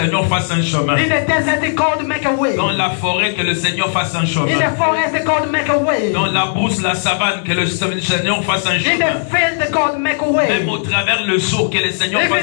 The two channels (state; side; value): silent; right; digital silence